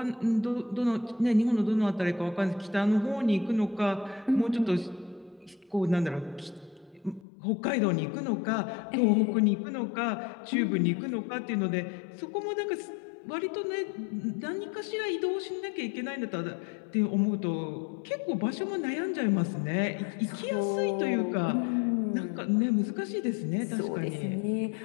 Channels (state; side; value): drops out; right; at 7.2 s